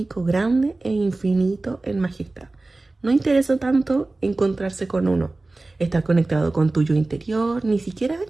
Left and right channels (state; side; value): quieter; left; 3.1 dB